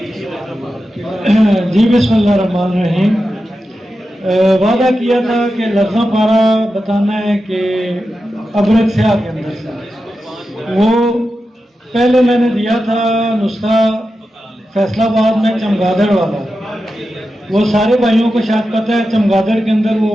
جی بسم اللہ الرحمن الرحیم. وعدہ کیا تھا کہ لفظہ پارا بتانا ہے کہ ابرک سیاہ کے اندر سے وہ پہلے میں نے دیا تھا نسخہ فیصلہ آباد میں چمگادڑ والا. وہ سارے بھائیوں کو شاید پتہ ہے چمگادڑ کے اندر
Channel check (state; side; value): normal; both; correlation 0.91